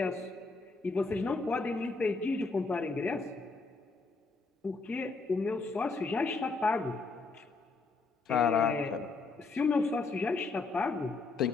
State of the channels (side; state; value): right; quieter; 4.0 dB